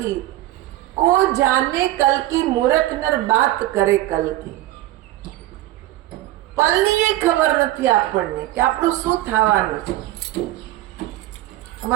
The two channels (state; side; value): quieter; left; 15.5 dB